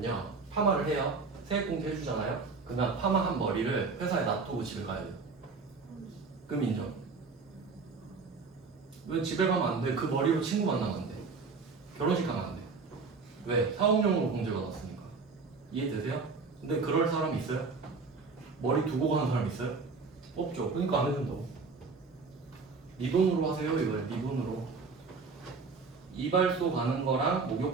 파마를 해요. 세액공제 해주잖아요. 그다음 파마한 머리를 회사에 놔두고 집에 가야 돼요. 그럼 인정. 왜 집에 가면 안 돼? 그 머리로 친구 만나면 안 돼. 결혼식 가면 안 돼. 왜? 사업용으로 공제받았으니까. 이해되세요? 근데 그럴 사람이 있어요? 머리 두고 가는 사람 있어요? 없죠. 그러니까 안 해준다고. 네 돈으로 하세요 이거예요. 네 돈으로. 이발소 가는 거랑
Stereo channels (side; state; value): left; quieter; 4.5 dB